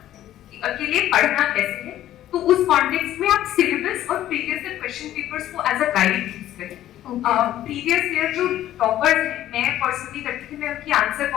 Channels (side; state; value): right; quieter; 12.9 dB